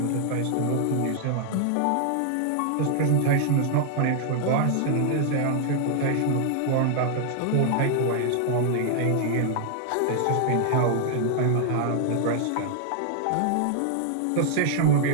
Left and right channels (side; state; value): both; different; correlation 0.00